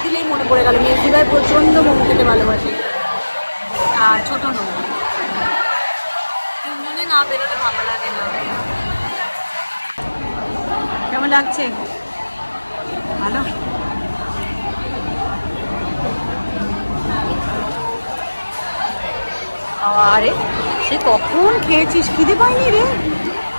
দিলেই মনে পড়ে গেল, মেয়ের ভাই প্রচণ্ড মোমো খেতে ভালোবাসে, আর ছোট নয়। 3 জনে না বেরোলে ভালো লাগে না। কেমন লাগছে? ভালো। আরে সে কখন খেয়েছিস, খিদে পাইনি রে?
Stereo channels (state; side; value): inverted; both; correlation -1.00